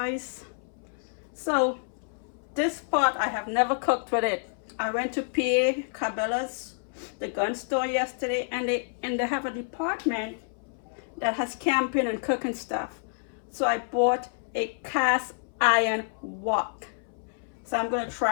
So this pot, I have never cooked with it. I went to PA Cabela's, the gun store yesterday, and they have a department that has camping and cooking stuff. So I bought a cast iron wok. So I'm gonna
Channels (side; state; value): right; silent; 59 dB below the other